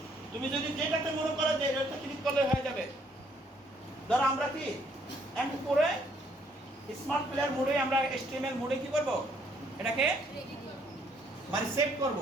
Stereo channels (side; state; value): both; normal; correlation 0.67